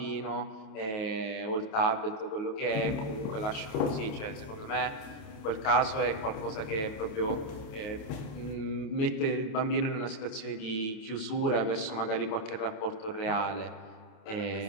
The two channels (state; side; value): late; right; 28 ms